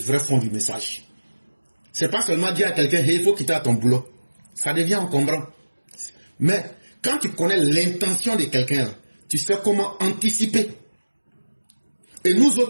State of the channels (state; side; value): inverted; both; correlation -1.00